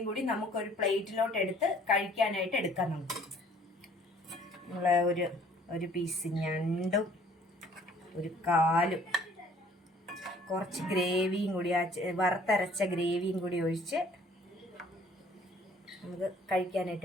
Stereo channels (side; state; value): both; normal; correlation 0.57